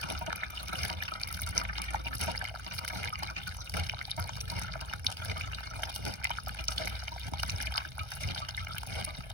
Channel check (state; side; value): late; left; 1.3 ms